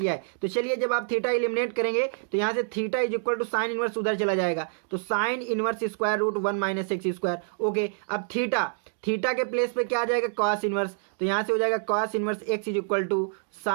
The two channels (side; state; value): left; silent; digital silence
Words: है। तो चलिए जब आप थीटा एलिमिनेट करेंगे तो यहाँ से theta is equal to sine inverse उधर चला जाएगा, तो sine inverse square root 1 minus x square, okay. अब थीटा के प्लेस पे क्या आ जाएगा कॉस इनवर्स, तो यहाँ से हो जाएगा cos inverse x is equal to